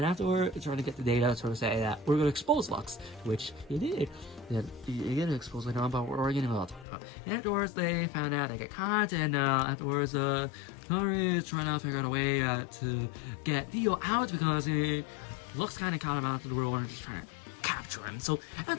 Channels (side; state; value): right; drops out; at 6.9 s